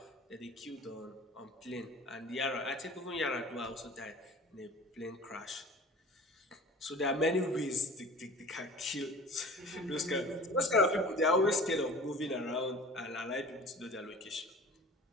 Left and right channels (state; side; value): normal; both; correlation 0.42